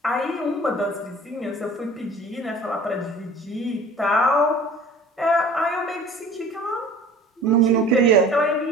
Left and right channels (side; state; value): both; normal; correlation 0.45